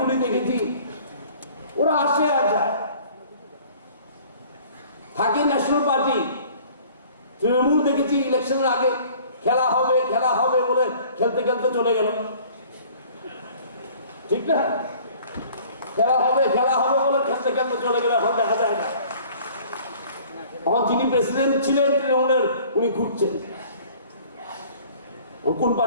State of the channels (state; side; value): inverted; both; correlation -0.51